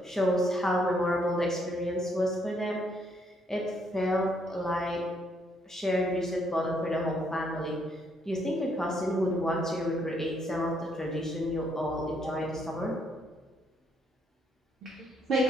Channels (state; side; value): normal; both; correlation 0.71